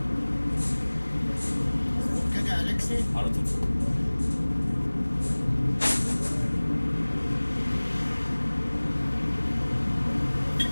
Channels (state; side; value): inverted; both; correlation -1.00